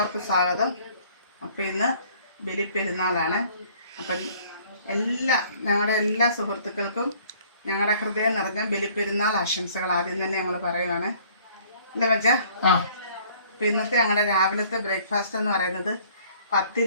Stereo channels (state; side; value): inverted; both; correlation -0.56